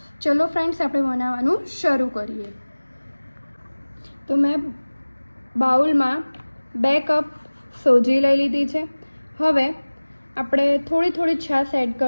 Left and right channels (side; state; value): both; inverted; correlation -1.00